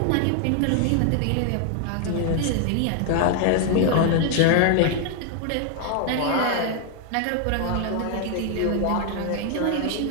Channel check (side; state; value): both; different; correlation 0.00